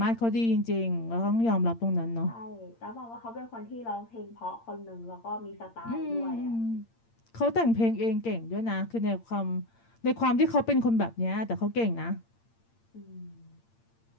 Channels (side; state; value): right; late; 8.7 ms